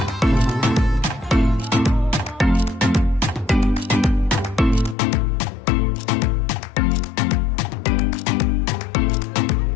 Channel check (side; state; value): right; drops out; at 5.0 s